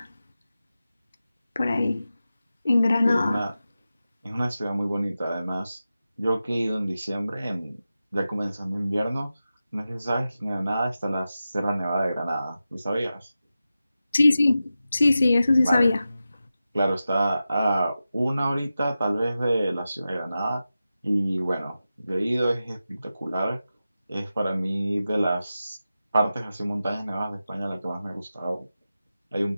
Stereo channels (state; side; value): inverted; both; correlation -0.93